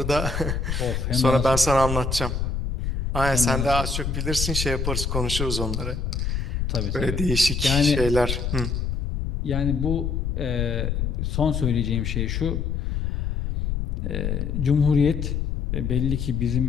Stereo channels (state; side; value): noise; left; rumble, 1 dB below the sound